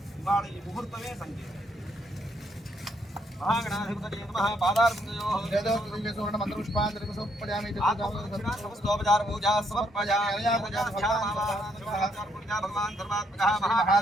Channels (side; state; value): both; normal; correlation 0.72